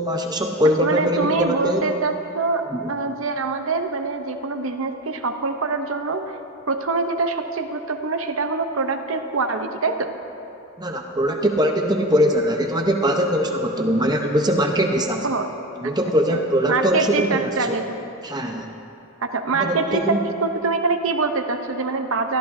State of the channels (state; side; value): normal; both; correlation 0.20